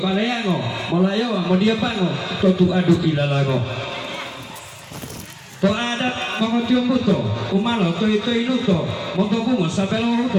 baleango malayo modiapango to tu adu ilalago to ada mangotio buto umalo to inuto montobungo sabelo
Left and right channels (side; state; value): both; identical; correlation 1.00